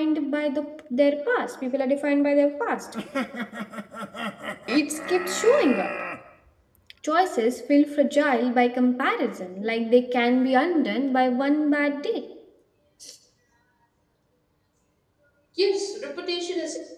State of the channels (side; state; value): both; identical; correlation 1.00